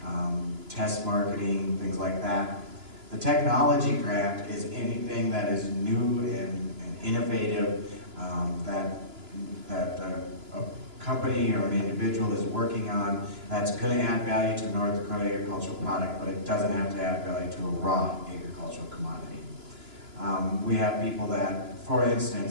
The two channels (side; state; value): left; late; 2.9 ms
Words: test marketing, things like that. The technology grant is anything that is new and innovative that a company or an individual is working on that's going to add value to North Dakota agricultural product, but it doesn't have to add value to a raw agricultural commodity. We have people that, for